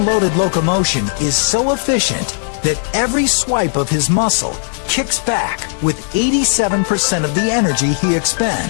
locomotion is so efficient that every swipe of his muscle kicks back with 87% of the energy he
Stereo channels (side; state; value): right; silent; 68 dB below the other